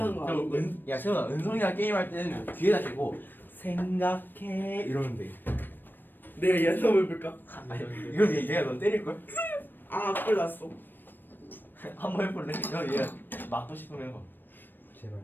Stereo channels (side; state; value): right; late; 0.093 ms